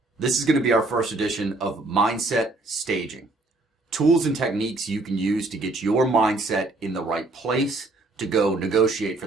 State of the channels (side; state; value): left; quieter; 3.0 dB